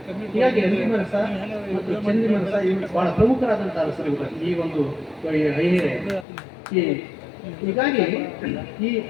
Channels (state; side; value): drops out; right; at 6.2 s